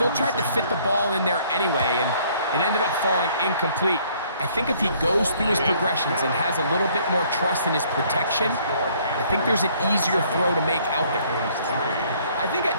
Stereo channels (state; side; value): inverted; both; correlation -0.62